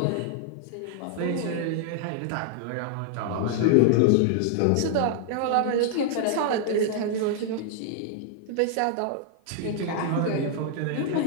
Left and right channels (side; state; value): both; different; correlation 0.00